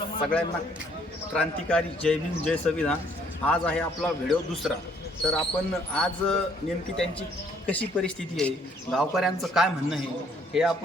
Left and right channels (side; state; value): both; normal; correlation 0.64